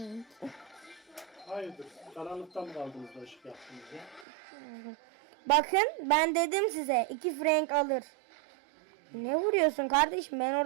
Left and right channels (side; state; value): left; drops out; at 4.2 s